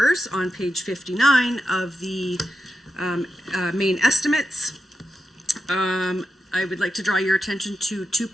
on page 59 of the main estimates, I would like to draw your attention to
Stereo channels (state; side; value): normal; both; correlation 0.89